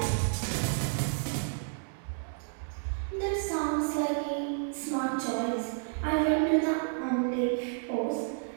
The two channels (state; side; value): silent; left; digital silence